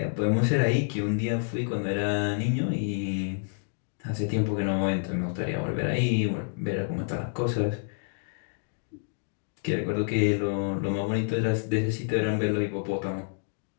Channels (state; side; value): silent; right; digital silence